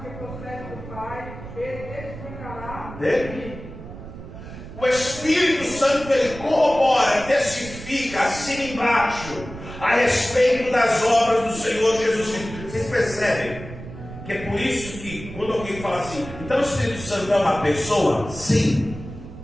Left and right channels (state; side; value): noise; right; rumble, 13 dB below the sound